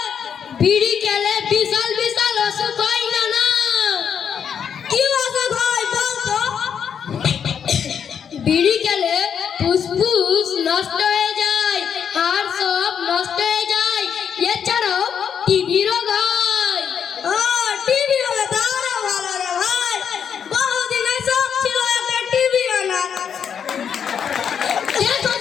বিড়ি খেলে বিশাল বিশাল অসুখ হয় না না কি অসুখ হয় বল তো বিড়ি খেলে ফুসফুস নষ্ট হয়ে যায় হাড় সব নষ্ট হয়ে যায় এছাড়াও টিবি রোগ হয় টিবি হলে তো আরো ভালো রে ভাই বহুদিন সব ছিল একটা টিবি আনা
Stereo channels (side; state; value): right; quieter; 7.7 dB